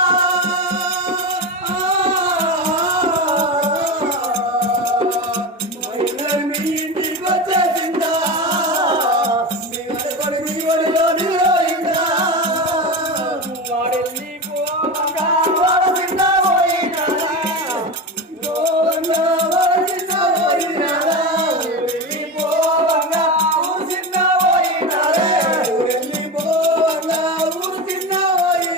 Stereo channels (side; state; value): both; normal; correlation 0.22